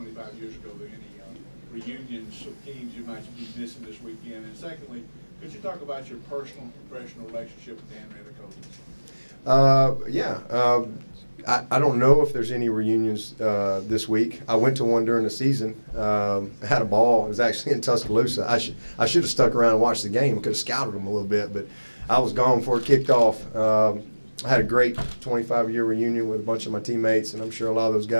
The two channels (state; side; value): inverted; both; correlation -1.00